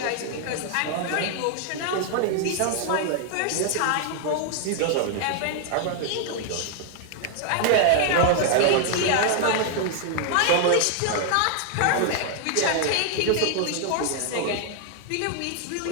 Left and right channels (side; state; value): both; different; correlation 0.00